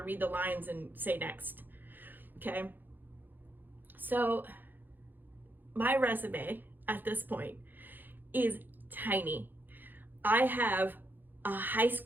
read the lines and say next. Okay? So my resume at this point is tiny. I have a high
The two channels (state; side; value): late; left; 0.090 ms